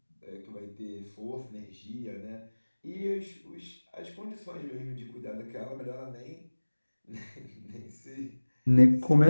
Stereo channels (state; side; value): inverted; both; correlation -1.00